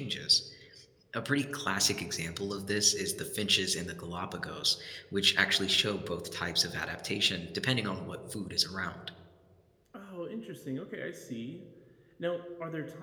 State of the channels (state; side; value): identical; both; correlation 1.00